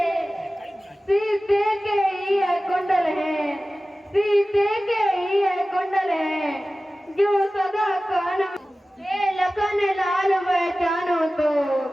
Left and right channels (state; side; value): normal; both; correlation 0.96